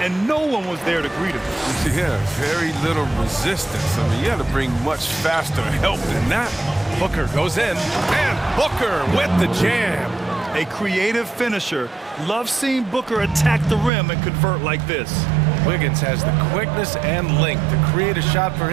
and no one was there to greet him. Yeah, very little resistance. I mean, you had to bring much faster help than that. Booker goes in, and Booker with the jam. A creative finisher. Loves seeing Booker attack the rim and convert like this. Wiggins has the quickness and length to create a shot for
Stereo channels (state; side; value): drops out; left; at 13.9 s